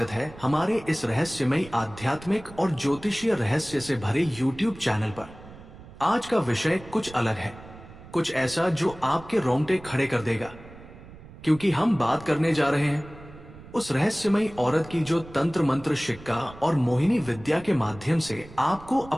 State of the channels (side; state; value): right; noise; rumble, 18 dB below the sound